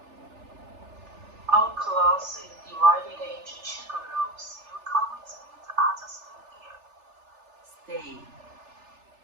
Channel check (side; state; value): left; late; 3.4 ms